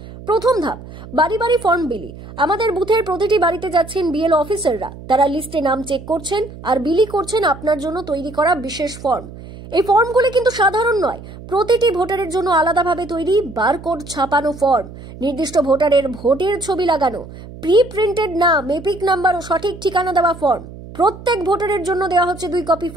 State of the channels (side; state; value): right; noise; hum, 15 dB below the sound